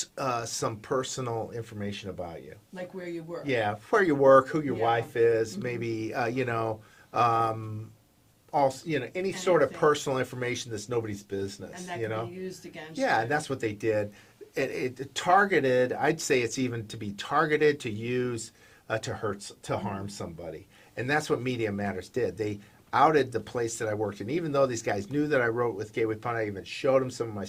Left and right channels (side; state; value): both; identical; correlation 1.00